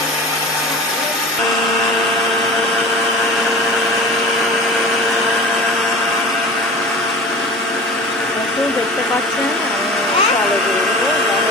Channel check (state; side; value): normal; both; correlation 0.38